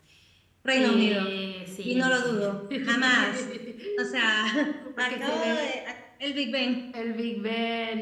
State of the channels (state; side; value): identical; both; correlation 1.00